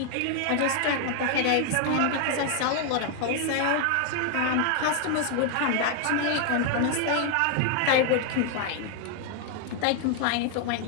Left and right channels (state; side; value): different; both; correlation 0.00